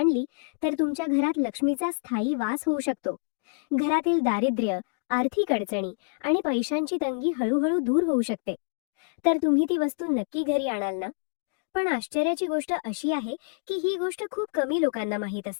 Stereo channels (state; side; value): silent; right; digital silence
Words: तर तुमच्या घरात लक्ष्मीचा स्थायी वास होऊ शकतो. घरातील दारिद्र्य, आर्थिक अडचणी आणि पैशांची तंगी हळूहळू दूर होऊ शकते, तर तुम्ही ती वस्तू नक्की घरी आणाल ना? पण आश्चर्याची गोष्ट अशी आहे की ही गोष्ट खूप कमी लोकांना माहीत